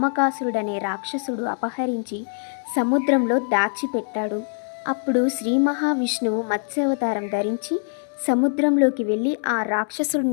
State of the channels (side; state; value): right; silent; 63 dB below the other